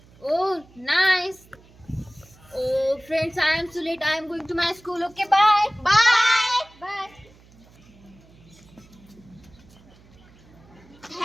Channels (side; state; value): right; noise; hum, 26 dB below the sound